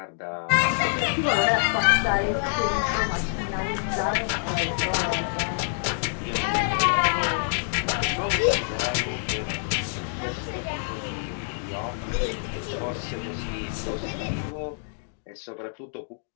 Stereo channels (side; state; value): right; silent; digital silence